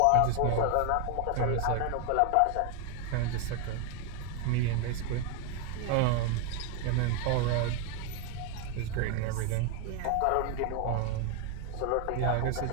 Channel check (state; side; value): different; both; correlation 0.01